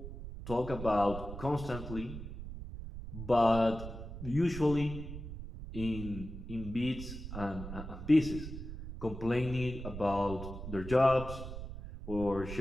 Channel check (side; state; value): right; noise; rumble, 9 dB below the sound